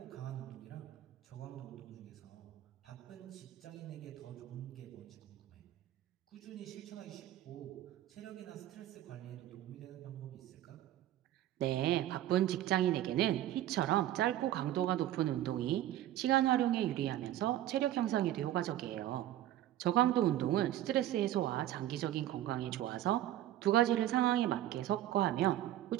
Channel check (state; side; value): quieter; left; 13.3 dB